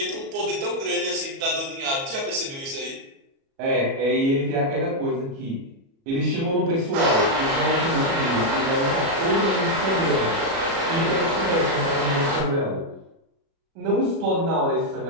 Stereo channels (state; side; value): late; left; 37 ms